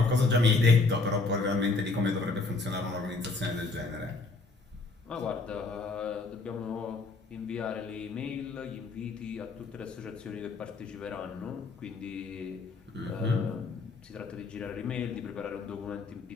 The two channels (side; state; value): right; quieter; 3.7 dB